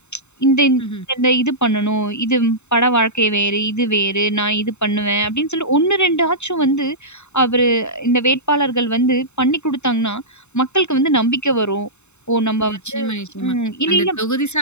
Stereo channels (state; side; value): late; right; 0.82 ms